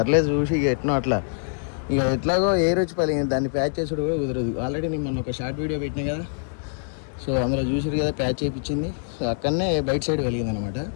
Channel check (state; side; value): silent; right; digital silence